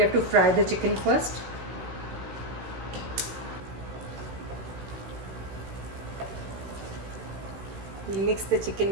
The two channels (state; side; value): late; left; 16 ms